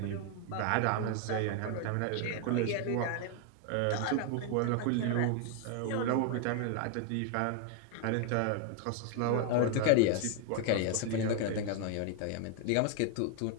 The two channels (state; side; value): different; both; correlation 0.00